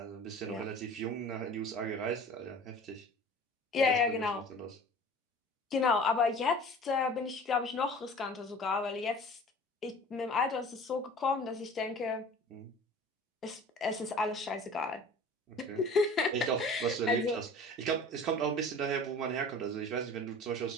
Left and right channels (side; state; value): both; normal; correlation 0.43